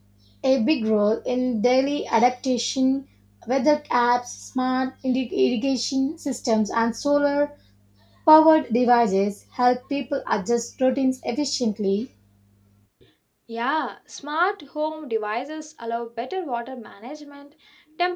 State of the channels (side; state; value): both; identical; correlation 1.00